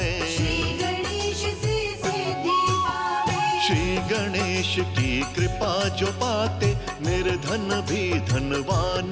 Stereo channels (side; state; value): both; identical; correlation 1.00